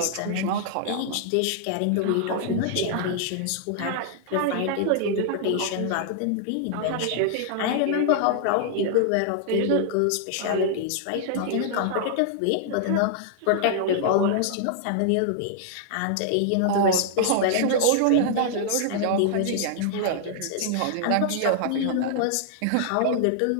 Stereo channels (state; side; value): different; both; correlation -0.01